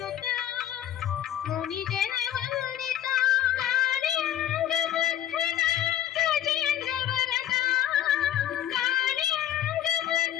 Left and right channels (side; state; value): right; quieter; 11.5 dB